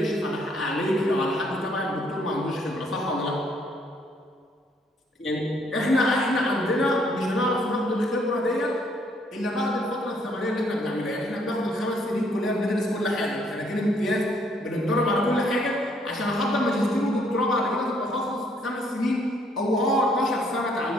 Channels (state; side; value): normal; both; correlation 0.67